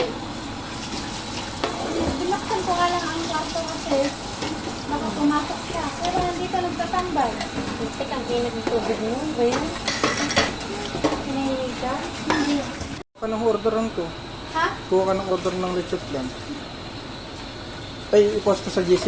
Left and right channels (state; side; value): identical; both; correlation 1.00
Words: Binaksan ko nga lang ang kwarto kasi baka pumasok siya. Pero nandito nagtatambay. Tek ang init ng tubig mo. Ba yan? Pinahilig ka? Hindi. Kuha ka ng order lang to. Ha? Kuha ka ng order ng lechon plan. Ay, i-post ko sa